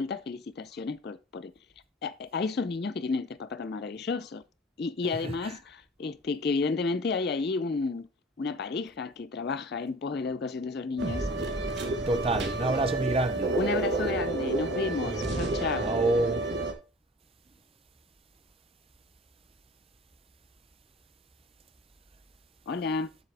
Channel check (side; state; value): both; normal; correlation 0.42